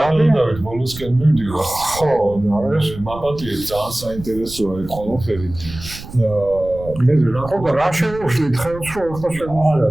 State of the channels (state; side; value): noise; right; rumble, 14 dB below the sound